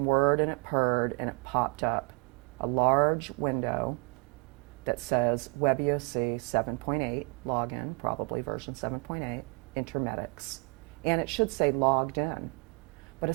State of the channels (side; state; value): left; quieter; 31.7 dB